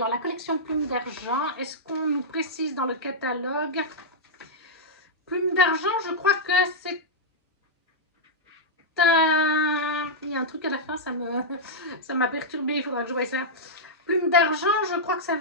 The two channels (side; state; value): both; normal; correlation -0.08